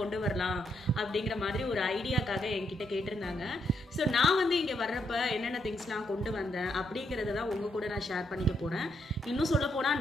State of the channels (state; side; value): normal; both; correlation 0.77